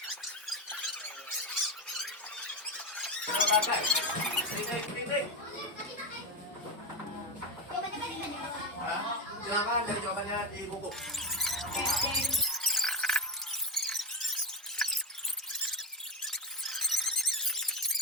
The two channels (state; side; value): normal; both; correlation 0.14